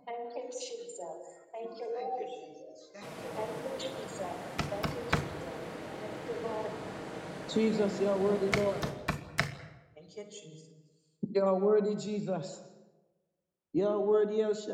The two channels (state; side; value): identical; both; correlation 1.00